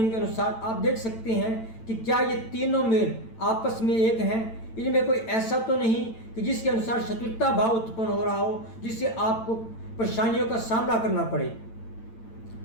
के अनुसार आप देख सकते हैं कि क्या ये तीनों मेल आपस में एक हैं। इनमें कोई ऐसा तो नहीं कि जिसके अनुसार शत्रुता भाव उत्पन्न हो रहा हो, जिससे आपको परेशानियों का सामना करना पड़े।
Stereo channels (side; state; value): right; late; 8.9 ms